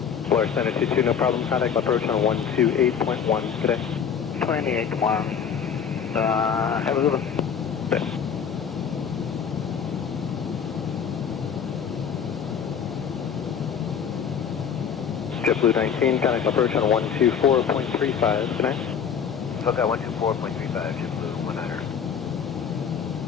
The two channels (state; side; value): quieter; right; 7.4 dB